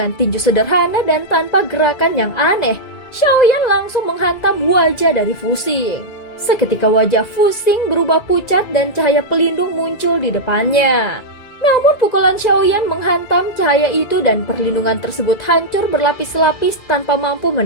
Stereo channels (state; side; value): late; right; 2.0 ms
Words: tinju sederhana dan tanpa gerakan yang aneh, Xiaoyan langsung menghantam wajah dari Fusing. Seketika wajah Fusing berubah pucat dan cahaya pelindung muncul di depannya. Namun pukulan Xiaoyan menghantam cahaya itu dan perlindungan tersebut hancur berlapis-lapis tanpa mampu